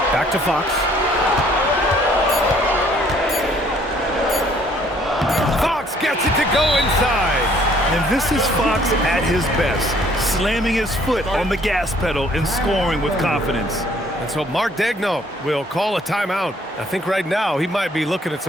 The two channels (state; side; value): normal; both; correlation 0.61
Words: Back to Fox. Fox gets it to go inside. And this is Fox at his best, slamming his foot on the gas pedal and scoring with confidence. And so Mark Daigneault will call a timeout. I think right now he might be looking at